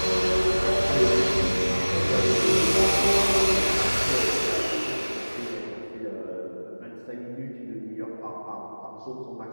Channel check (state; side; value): inverted; both; correlation -1.00